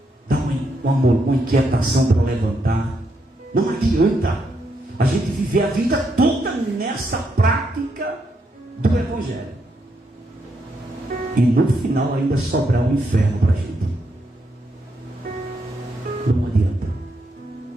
dá uma inquietação para levantar. Não adianta a gente viver a vida toda nessa prática do Evangelho e no final ainda sobrar um inferno para a gente. Não adianta.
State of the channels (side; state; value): both; normal; correlation 0.79